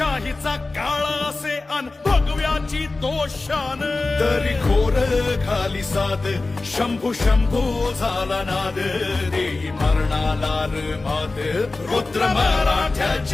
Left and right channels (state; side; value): quieter; right; 3.4 dB